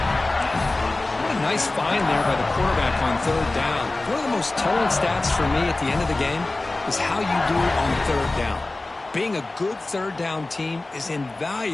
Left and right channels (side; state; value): right; quieter; 3.0 dB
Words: What a nice find there by the quarterback on third down. One of the most telling stats for me at the end of the game is how you do on third down. Being a good third down team is